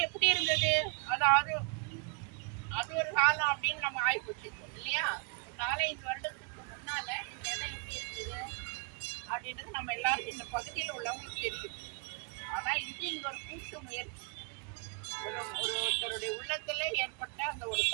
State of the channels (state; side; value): quieter; left; 36.5 dB